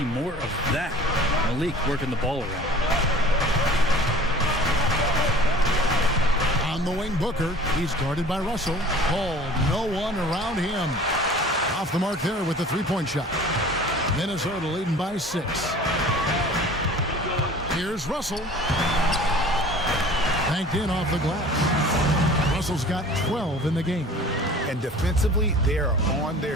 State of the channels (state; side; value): normal; both; correlation 0.45